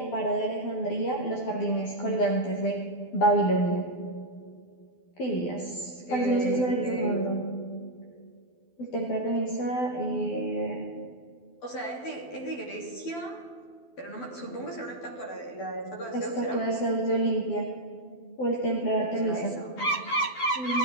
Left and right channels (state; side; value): late; right; 12 ms